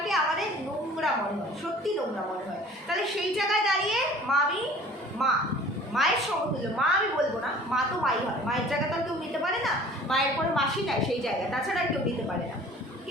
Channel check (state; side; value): normal; both; correlation 0.47